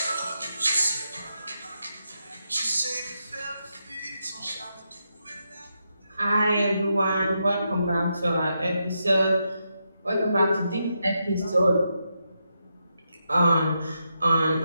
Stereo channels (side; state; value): both; inverted; correlation -0.84